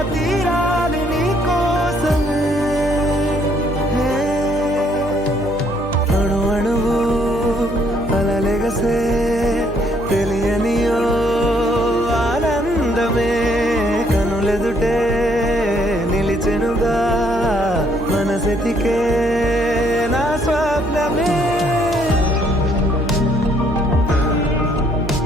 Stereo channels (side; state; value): right; noise; hum, 12 dB below the sound